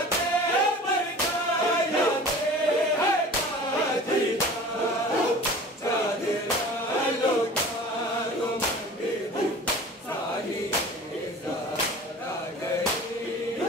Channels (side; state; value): both; normal; correlation 0.41